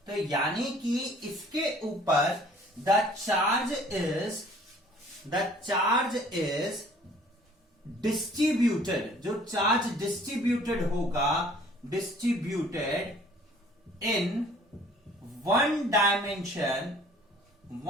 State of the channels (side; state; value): both; normal; correlation 0.54